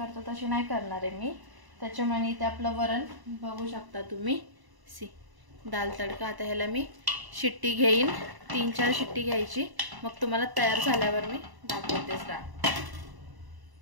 तशी नाही करणार आहे मी। त्याच्यामुळे इथे आपलं वरण बघू शकता तुम्ही, दाल तडका। आता ह्याला मी शिट्टी घेईन, 3-4 शिट्टी घ्यायची, मग तुम्हाला तयार झाल्यावर मी दाखवतेच डाळ।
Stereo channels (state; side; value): late; left; 1.0 ms